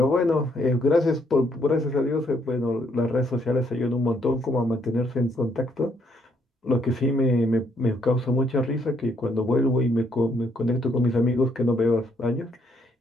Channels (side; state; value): both; normal; correlation 0.71